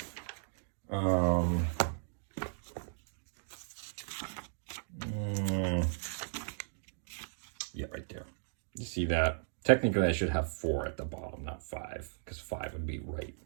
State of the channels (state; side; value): silent; left; digital silence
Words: yeah, right there. You see that? Technically, I should have 4 at the bottom, not 5, because 5 would be right.